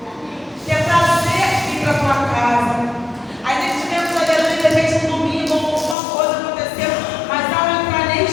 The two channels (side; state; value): right; drops out; at 6.0 s